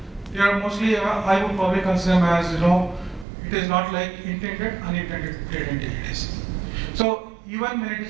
they are mostly, I would probably consider them as, it is not like intended, unintended data integrities. So even when it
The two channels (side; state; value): left; drops out; at 3.2 s